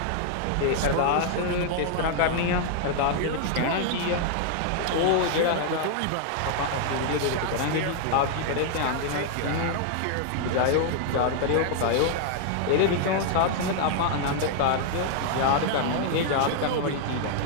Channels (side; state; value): both; different; correlation -0.01